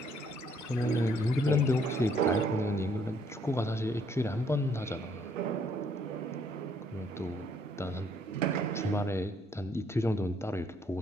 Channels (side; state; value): both; normal; correlation 0.67